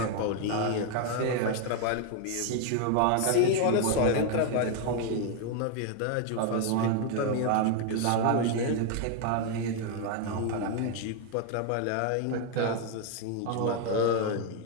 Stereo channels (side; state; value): both; different; correlation 0.00